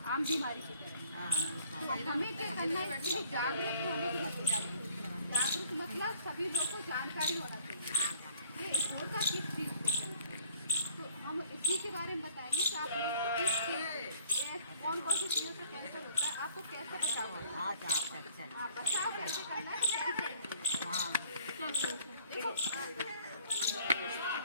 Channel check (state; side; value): inverted; both; correlation -0.57